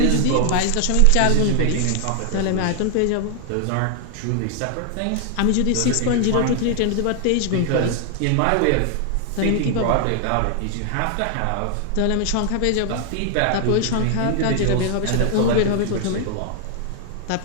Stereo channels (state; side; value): different; both; correlation 0.00